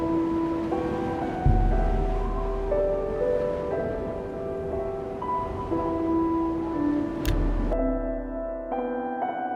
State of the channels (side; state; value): both; identical; correlation 1.00